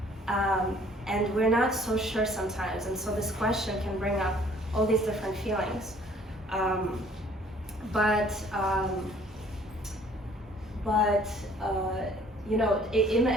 And we're not so sure sometimes, and so this question can bring up all these different feelings. You know,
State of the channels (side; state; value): both; normal; correlation 0.57